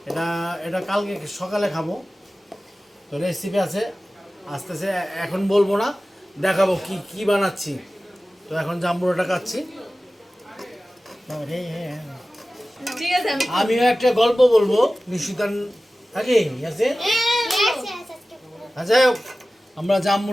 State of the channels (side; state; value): both; normal; correlation 0.96